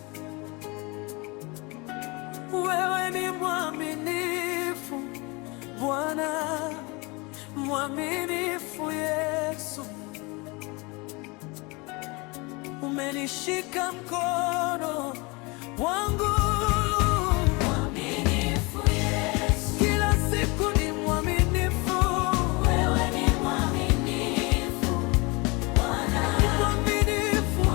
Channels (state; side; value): quieter; right; 26.7 dB